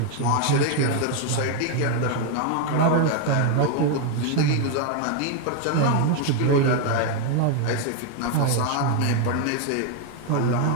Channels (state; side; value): different; both; correlation 0.01